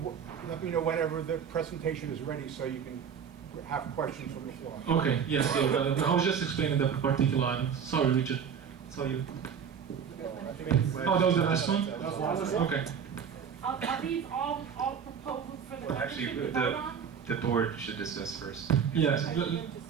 let me know whenever the presentation is ready so you can have questions from the floor. Okay, yes, I was just explaining that particular item. Sorry, Richard. Saw you. Oh, that was the last one? Okay. Are these all proposals for the Well, actually, membership to vote on? the board should discuss first. Yes,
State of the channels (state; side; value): quieter; left; 7.3 dB